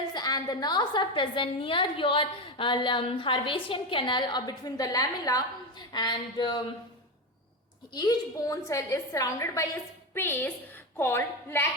and the nerves are present near your Harvasian canal or between the lamella, and each bone cell is surrounded by a space called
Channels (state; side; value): normal; both; correlation 0.15